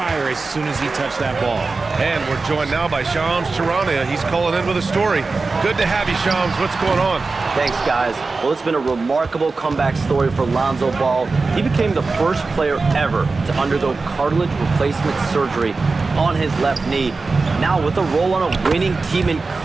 as soon as he touched that ball. And we're joined now by Shams Charania. He's calling in with a story. Good to have you, Shams. What's going on? Thanks, guys. Well, it's been a remarkable comeback story for Lonzo Ball. He became the first player ever to undergo cartilage replacement surgery on his left knee. Now, with a role on a winning team in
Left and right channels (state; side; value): quieter; left; 3.9 dB